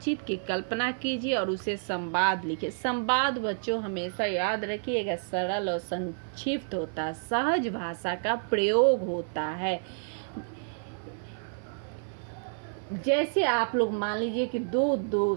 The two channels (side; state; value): left; silent; 58 dB below the other